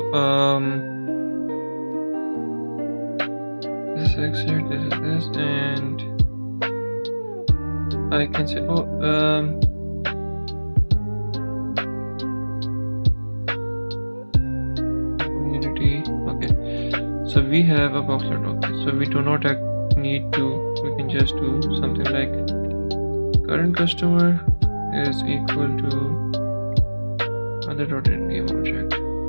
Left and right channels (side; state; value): both; inverted; correlation -1.00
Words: this exit, this is this, and I can say community. Okay, so we have a boxlet. Okay, so we do not need to, we can just do something like current customer is equal to other dot in game object,